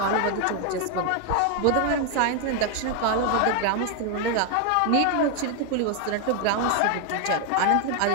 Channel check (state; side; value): different; both; correlation 0.01